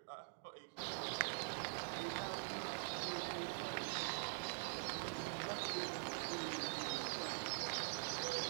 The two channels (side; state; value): left; silent; digital silence